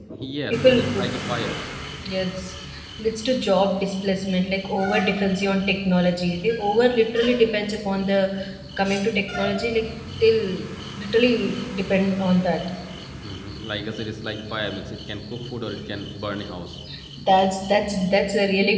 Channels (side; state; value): both; identical; correlation 1.00